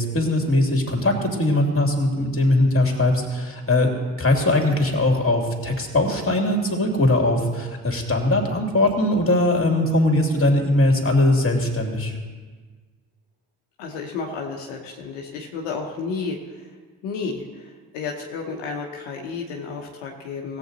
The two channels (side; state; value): both; normal; correlation 0.42